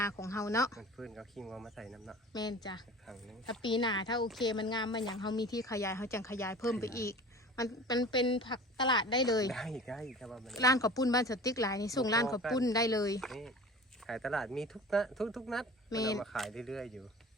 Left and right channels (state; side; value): normal; both; correlation 0.40